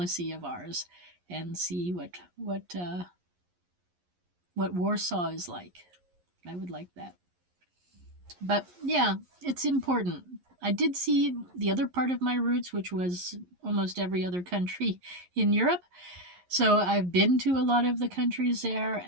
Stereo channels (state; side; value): late; left; 11 ms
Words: of ours and see what Warsaw is like. I would like that. But yeah, it's important. I did see the other part of my roots, which was almost every other country in Europe. So I've been to a lot of the countries there,